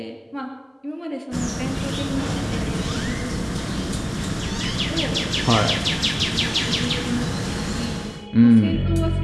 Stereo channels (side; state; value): both; identical; correlation 1.00